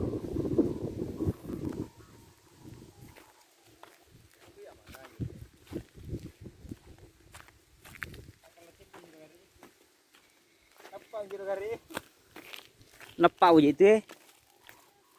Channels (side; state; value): both; identical; correlation 1.00